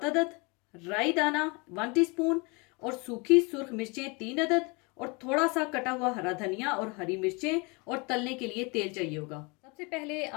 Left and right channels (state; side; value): quieter; right; 29.3 dB